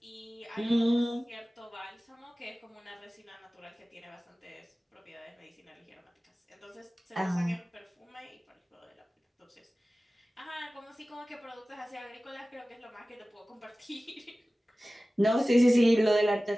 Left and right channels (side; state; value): both; normal; correlation 0.97